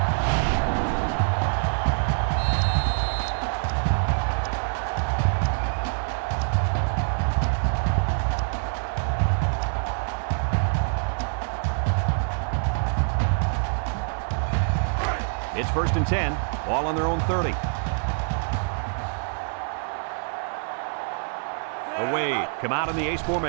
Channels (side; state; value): left; silent; 61 dB below the other